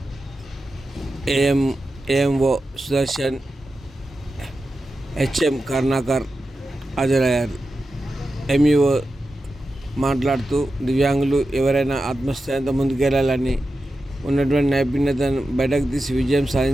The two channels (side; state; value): both; normal; correlation 0.91